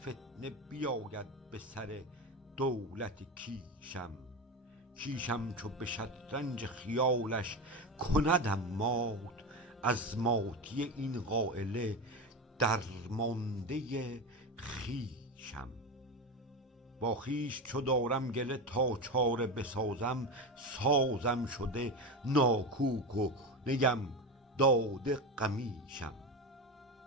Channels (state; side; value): normal; both; correlation 0.20